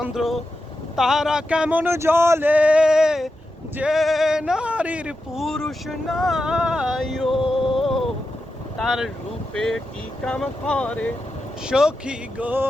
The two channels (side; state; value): both; normal; correlation 0.89